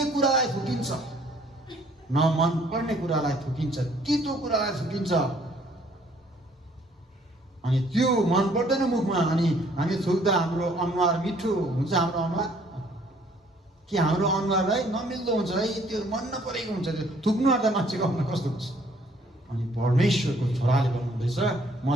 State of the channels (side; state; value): both; normal; correlation 0.61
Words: कुरालाई थुकिन्छ? न मन पर्ने कुरालाई थुकिन्छ, तितो कुरालाई थुकिन्छ। अनि त्यो मन पर्दैन मुखमा, अनि हामी थुक्दा हाम्रो अनुहार मिठो हुन्छ। हाम्रो अनुहार कि हाम्रो अनुहारलाई नमिल्दो हुन्छ है, त्यो मन नपरेको हुन्छ। त्यो थुक्नु आँट्दा मान्छेको अनुहार कस्तो हुन्छ? अनि परमेश्वरको छोराले भन्नुहुँदैछ, म